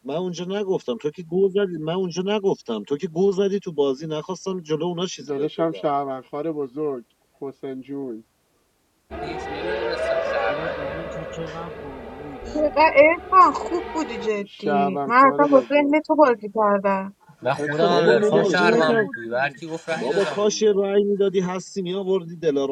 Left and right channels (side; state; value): both; identical; correlation 1.00